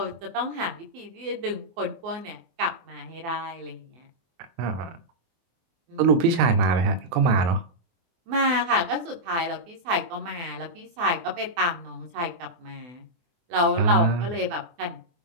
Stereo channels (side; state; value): left; late; 24 ms